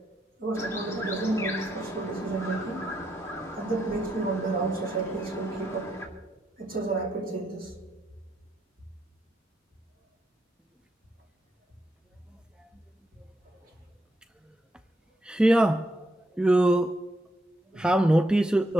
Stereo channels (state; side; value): normal; both; correlation 0.79